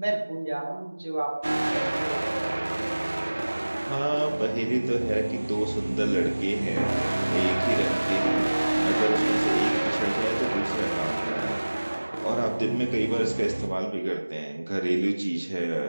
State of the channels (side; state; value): both; inverted; correlation -1.00